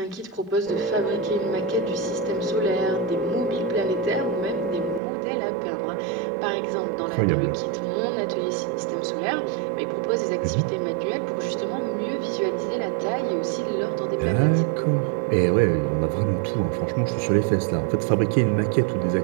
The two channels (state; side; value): drops out; left; at 5.0 s